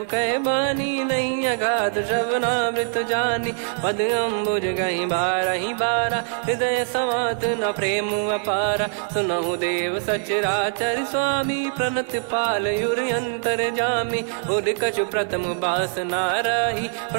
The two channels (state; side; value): silent; left; digital silence